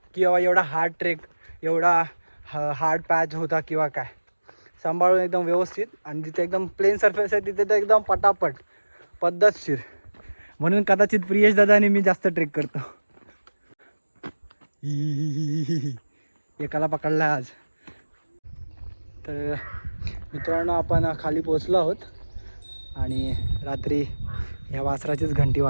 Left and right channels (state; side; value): inverted; both; correlation -1.00